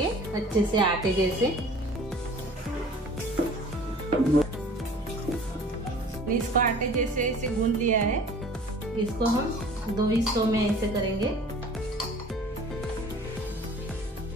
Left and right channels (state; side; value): normal; both; correlation 0.47